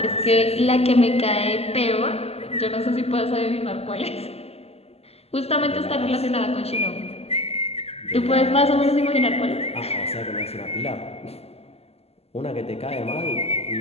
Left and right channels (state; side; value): late; right; 0.29 ms